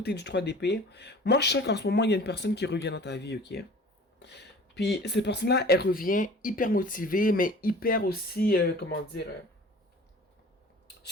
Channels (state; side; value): normal; both; correlation 0.44